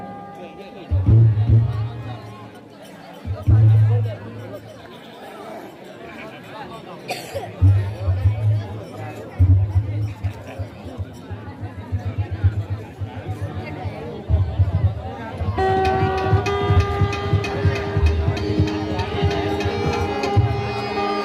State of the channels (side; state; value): both; identical; correlation 1.00